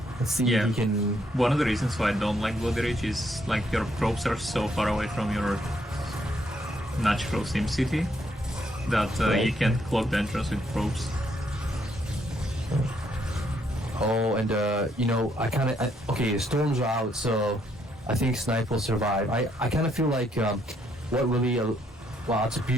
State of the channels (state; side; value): normal; both; correlation 0.72